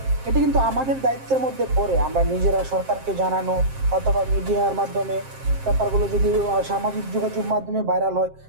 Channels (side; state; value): left; late; 7.6 ms